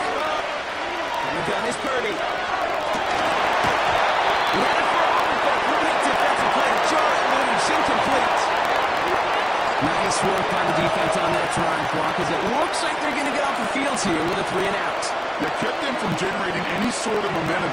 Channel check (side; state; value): both; identical; correlation 1.00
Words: And the gun is Purdy. He had it for a moment, but a great defensive play to jar it loose. Incomplete. Nice work by the defense on that trying clock, as it looks like they're going to get off the field here with a 3 and out. That kept them from generating any sort of momentum